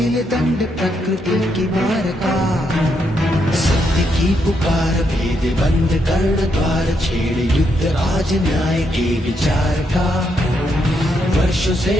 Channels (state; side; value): normal; both; correlation 0.78